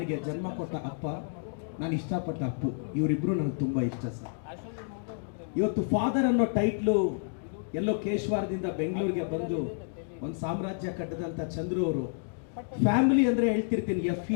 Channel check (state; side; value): silent; right; digital silence